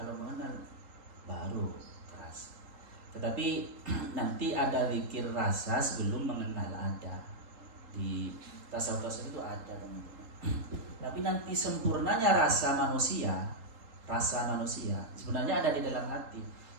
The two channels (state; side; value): late; left; 3.8 ms